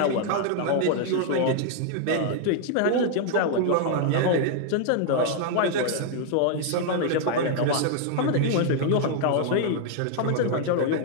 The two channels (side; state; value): both; different; correlation 0.00